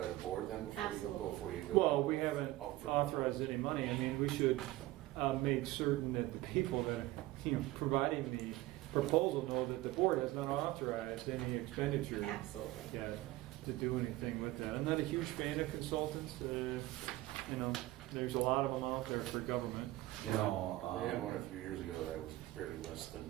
the board then Absolutely. before you go? Well, we haven't Out for- authorized any money. I mean, we should make certain that the people that are, providing the proposal know that the board has not authorized any expenditure. Absolutely. Yeah, to do anything with that. I'm not a huge fan of consultants. There's a lot of them out there for government. You know, They had one a few years ago that was very less than.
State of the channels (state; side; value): quieter; left; 17.4 dB